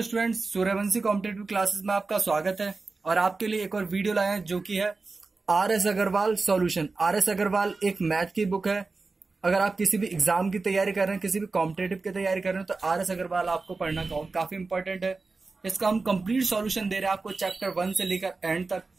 स्टूडेंट्स, सूर्यवंशी कॉम्पिटेटिव क्लासेस में आपका स्वागत है। और आपके लिए एक और वीडियो लाए हैं जो कि है R S Agarwal solution. R S Agarwal एक मैथ की बुक है। अगर आप किसी भी एग्जाम की तैयारी कर रहे हैं, किसी भी कॉम्पिटेटिव की तैयारी कर रहे हैं, तो आर एस अग्रवाल आपको पढ़ना काफी इंपॉर्टेंट है। इसका हम कंप्लीट सॉल्यूशन दे रहे हैं आपको चैप्टर 1 से लेकर एंड तक।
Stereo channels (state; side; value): quieter; left; 3.9 dB